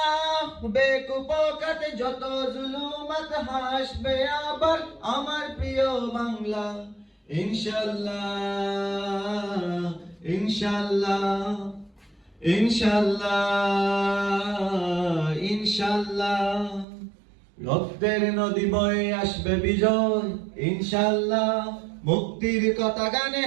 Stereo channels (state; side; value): drops out; left; at 16.9 s